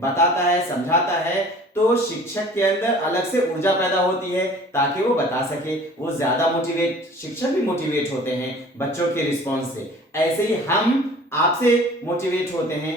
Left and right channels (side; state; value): both; normal; correlation 0.47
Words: बताता है, समझाता है, तो शिक्षक के अंदर अलग से ऊर्जा पैदा होती है ताकि वो बता सके, वो ज्यादा मोटिवेट, शिक्षक भी मोटिवेट होते हैं बच्चों के रिस्पॉन्स से। ऐसे ही हम आपसे मोटिवेट होते हैं।